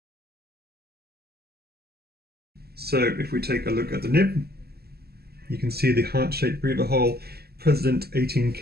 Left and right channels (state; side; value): late; left; 0.46 ms